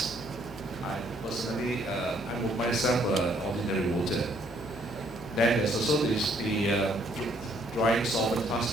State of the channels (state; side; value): normal; both; correlation 0.66